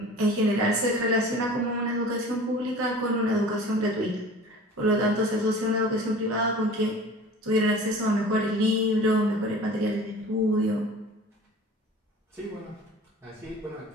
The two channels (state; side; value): normal; both; correlation 0.42